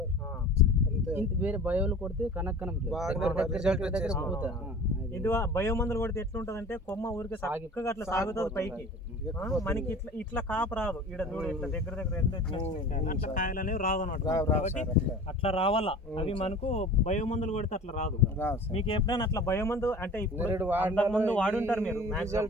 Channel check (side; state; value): both; normal; correlation 0.41